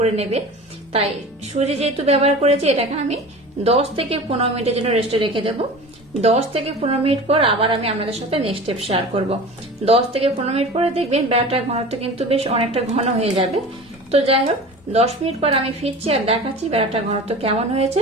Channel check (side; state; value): both; normal; correlation 0.36